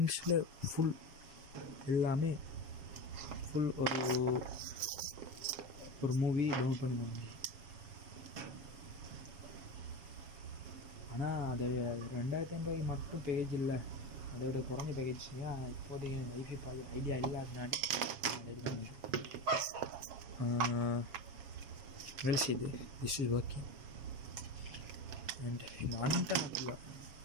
ஃபுல் எல்லாமே ஃபுல் ஒரு மூவி டவுன்லோட் பண்ண முடியும். ஆனால் அது 2500 மட்டும் பேக்கேஜ் இல்லை. அதை விட குறைஞ்ச பேக்கேஜ். இப்போதைக்கு வைஃபை பார்க்க ஐடியா இல்லை. அதனாடி வேலை செய்யுது. This is working. அண்ட் இந்த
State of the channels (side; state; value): left; late; 7.3 ms